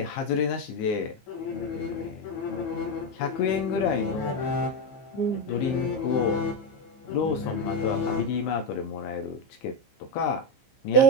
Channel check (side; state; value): right; late; 15 ms